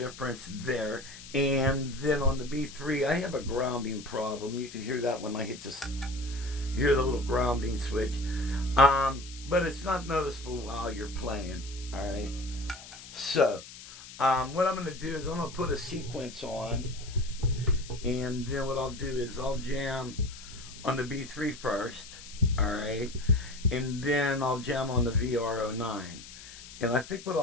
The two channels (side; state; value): left; noise; hiss, 15 dB below the sound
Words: there. And then on the B3, I have a grounding problem. You can hear that when I hear the little grounding switch. But it's not noticeable while you're playing. All right. So, what I'm going to do is I'm going to put a sequence on. And then what I'll do is I'll jam on the B3 first. All right. And then I'll jam on the VR09. And I think what